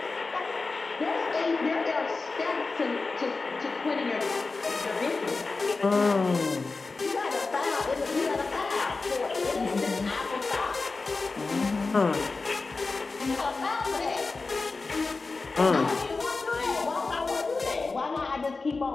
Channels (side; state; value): right; quieter; 3.9 dB